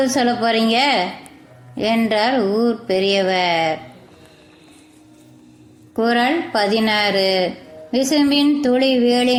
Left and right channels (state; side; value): identical; both; correlation 1.00